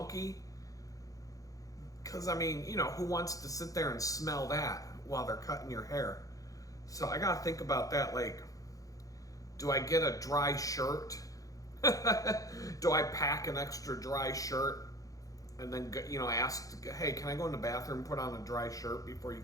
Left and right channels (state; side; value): late; right; 0.17 ms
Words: Because, who wants to sit there and smell that while they're cutting your hair? So I got to think about that. Like, do I get a dry shirt? Do I pack an extra dry shirt and then, ask, hey, can I go in the bathroom and put on a dry shirt before you